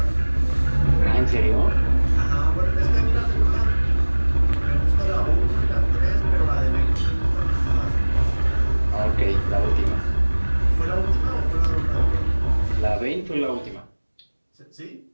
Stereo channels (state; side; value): inverted; both; correlation -1.00